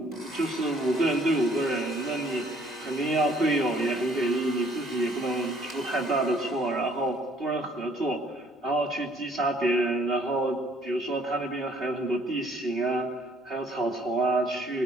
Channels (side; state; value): both; normal; correlation 0.61